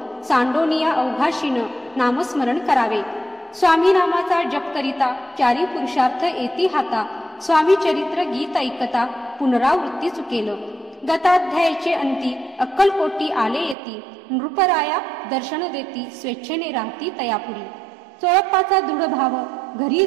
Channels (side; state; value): left; drops out; at 13.8 s